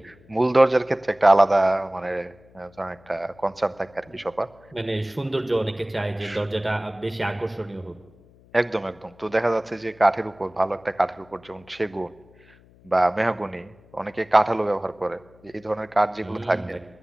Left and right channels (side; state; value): left; noise; hum, 27 dB below the sound